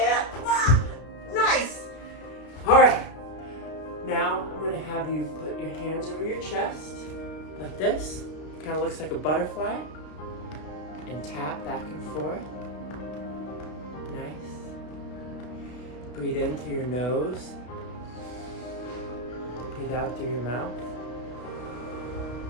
Nice. All right, now I'm gonna have you put your hands over your chest, like this. Kind of looks like a butterfly. And tap back and forth. Nice. Breathe in through your nose. Breathe out through your mouth.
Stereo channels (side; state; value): right; late; 32 ms